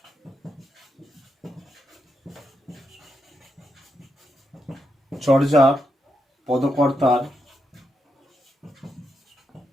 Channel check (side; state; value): both; normal; correlation 0.83